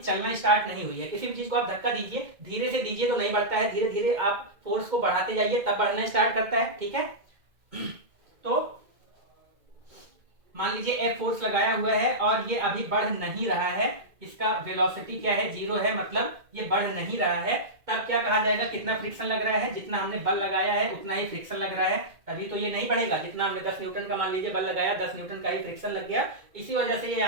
स्टार्ट नहीं हुई है, किसी भी चीज को आप धक्का दीजिए, धीरे से दीजिए तो नहीं बढ़ता है, धीरे धीरे आप फोर्स को बढ़ाते जाइए तब बढ़ना स्टार्ट करता है, ठीक है। तो मान लीजिए F फोर्स लगाया हुआ है और ये अभी बढ़ नहीं रहा है, इसका वेलोसिटी क्या है, 0 है, मतलब ये बढ़ नहीं रहा है, तब क्या कहा जाएगा, कितना फ्रिक्शन लग रहा है, जितना हमने बल लगाया है उतना ही फ्रिक्शन लग रहा है, तभी तो ये नहीं बढ़ेगा। जितना हमने 10 न्यूटन का मान लीजिए बल लगाया, 10 न्यूटन का ही फ्रिक्शन लग गया, इसी वजह से ये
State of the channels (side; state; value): left; late; 2.1 ms